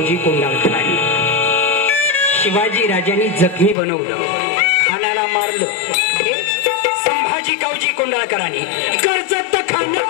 कोंडाळकरांनी. शिवाजी राजांनी जखमी बनवलं. खानाला मारलं. हे संभाजी कावजी कोंडाळकरांनी. कर्जत खान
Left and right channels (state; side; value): drops out; right; at 3.8 s